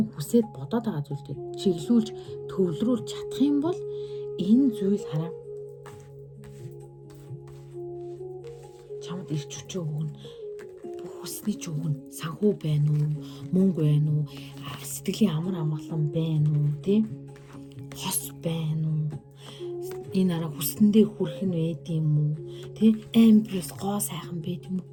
хүсээд бодоод байгаа зүйлтэй чиглүүлж төвлөрүүлж чадах юм бол энэ зүйл хараа чамд эрч хүчөө өгнө. Хүсний ч өгнө. Санхүү байна уу? Мөнгө байна уу? Сэтгэлийн амар амгалан байна уу? Тэ? Хос байна уу? Энэ арга хүсэндээ хүрэх нь байд юм уу? Тэ? Амбиус гоо сайхан байд юм уу?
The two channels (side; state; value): both; identical; correlation 1.00